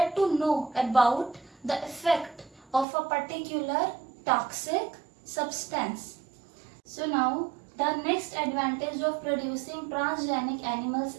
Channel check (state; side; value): drops out; left; at 2.9 s